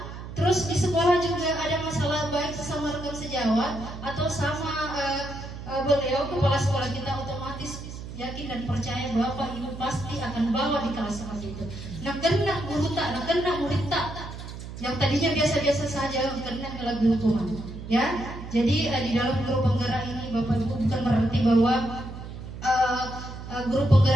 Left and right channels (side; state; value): right; noise; hum, 11 dB below the sound